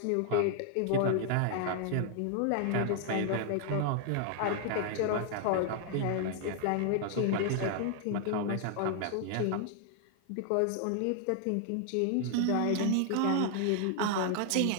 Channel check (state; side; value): different; both; correlation 0.00